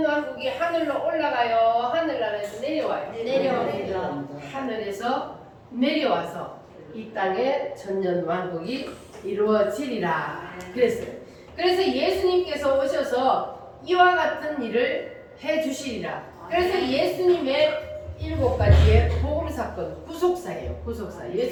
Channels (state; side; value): identical; both; correlation 1.00